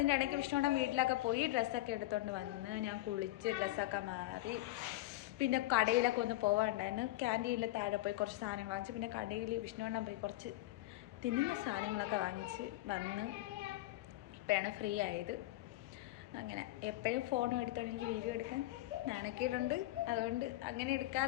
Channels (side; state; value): right; quieter; 17.4 dB